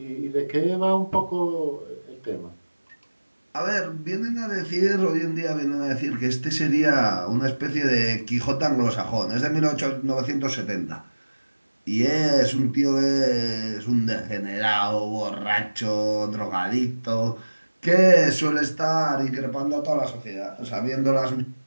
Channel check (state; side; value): inverted; both; correlation -1.00